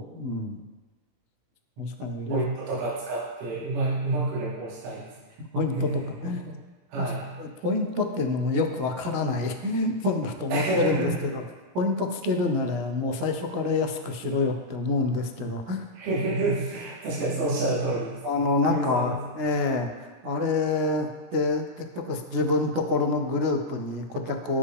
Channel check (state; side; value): late; left; 17 ms